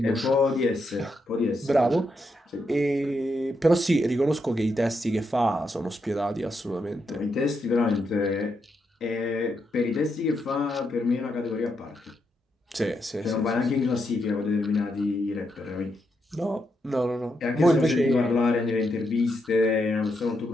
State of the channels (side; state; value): both; normal; correlation 0.82